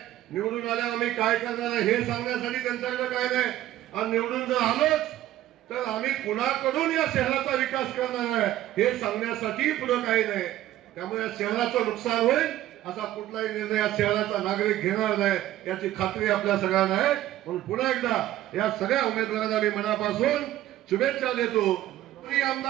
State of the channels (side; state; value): left; quieter; 13.8 dB